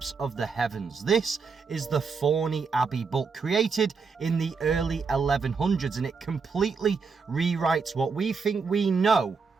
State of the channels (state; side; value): quieter; left; 5.1 dB